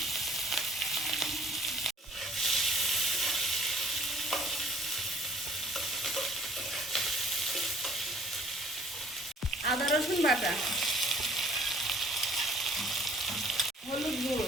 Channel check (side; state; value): both; normal; correlation 0.56